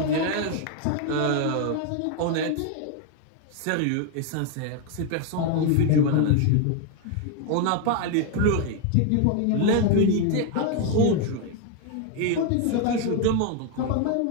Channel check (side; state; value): both; different; correlation 0.01